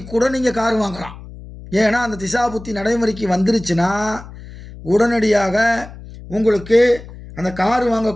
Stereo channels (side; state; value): left; noise; hum, 16 dB below the sound